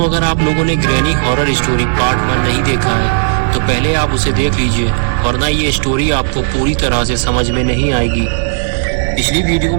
अगर आप लोगों ने ग्रैनी हॉरर स्टोरी पार्ट 1 नहीं देखा है तो पहले आप उसे देख लीजिए, वरना ये स्टोरी आपको पूरी तरह से समझ में नहीं आएगी। पिछली वीडियो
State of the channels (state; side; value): silent; left; digital silence